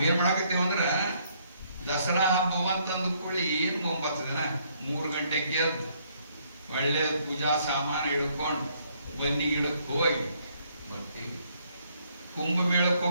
ಮಾಡಾಕತ್ತೇವ ಅಂದ್ರ ದಸರಾ ಹಬ್ಬ ಅಂತಂದು ಕೂಡಿ ಏನು 9 ದಿನ 3 ಗಂಟೆಗೆ ಎದ್ದು ಒಳ್ಳೆ ಪೂಜಾ ಸಾಮಾನು ಹಿಡ್ಕೊಂಡು ಬನ್ನಿ ಗಿಡಕ್ಕೆ ಹೋಗಿ ಬರ್ತೀವಿ. ಕುಂಭಮೇಳಕ್ಕೆ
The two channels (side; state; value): both; inverted; correlation -0.69